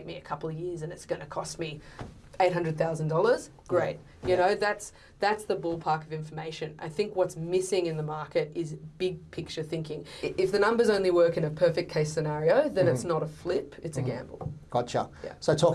me a couple of years and it's going to cost me $800,000, great. You know, that's the ballpark of information. I think what's missing in the market is big picture thinking. If the numbers only work in a perfect case scenario, then it's not a flip, it's a gamble. Gotcha. So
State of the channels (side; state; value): both; identical; correlation 1.00